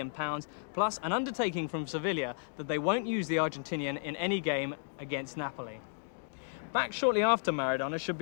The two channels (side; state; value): right; silent; digital silence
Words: plus an undertaking from Sevilla that they won't use the Argentinian in any game against Napoli. Back shortly after Maradona should